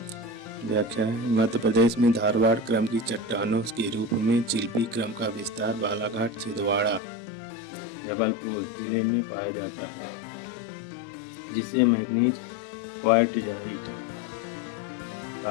व्याख्या है, मध्य प्रदेश में धारवाड़ क्रम की चट्टानों के रूप में चिल्पी क्रम का विस्तार बालाघाट, छिंदवाड़ा, जबलपुर जिले में पाया जाता है, जिससे मैग्नीज, क्वार्टजाइट,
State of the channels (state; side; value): drops out; right; at 7.0 s